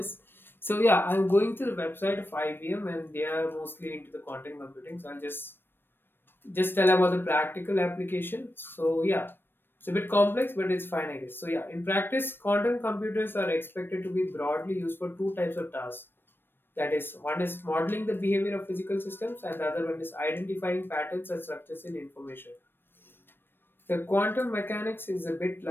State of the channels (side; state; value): right; late; 0.099 ms